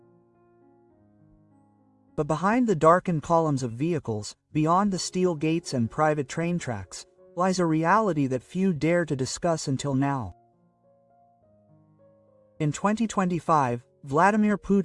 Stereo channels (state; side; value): identical; both; correlation 1.00